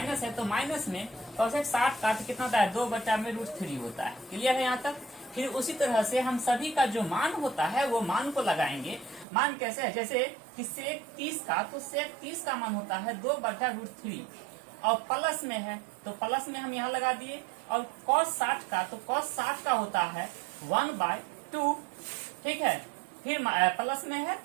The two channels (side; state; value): left; drops out; at 9.2 s